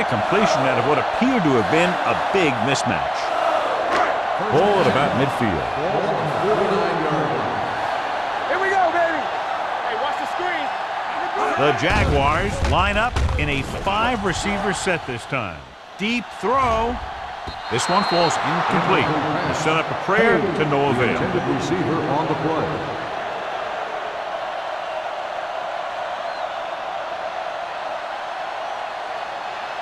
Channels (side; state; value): both; identical; correlation 1.00